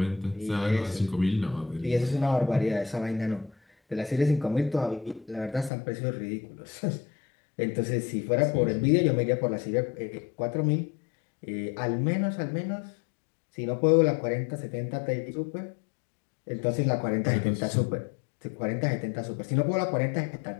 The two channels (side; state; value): right; drops out; at 5.7 s